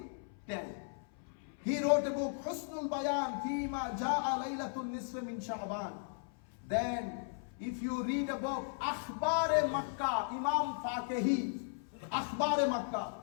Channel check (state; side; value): silent; right; 53 dB below the other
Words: He wrote a book, Husnul Bayan Fima Ja'a Laylatul Nisf min Sha'ban. Then, if you read a book, Akhbar-e Makkah, Imam Faqihi, Akhbar-e Makkah.